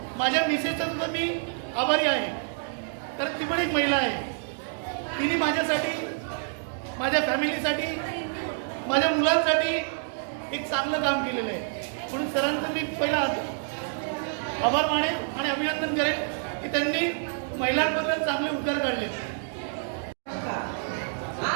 माझ्या मिसेसचा सुद्धा मी आभारी आहे, कारण ती पण एक महिला आहे. तिने माझ्यासाठी, माझ्या फॅमिलीसाठी, माझ्या मुलांसाठी एक चांगलं काम केलेलं आहे. म्हणून सरांचं मी पहिला आभार मानेन आणि अभिनंदन करेन की त्यांनी महिलांबद्दल चांगले उद्गार काढले.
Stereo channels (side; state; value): left; silent; digital silence